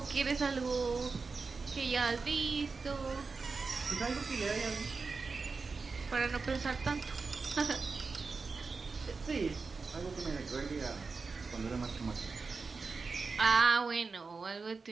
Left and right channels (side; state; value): left; quieter; 4.4 dB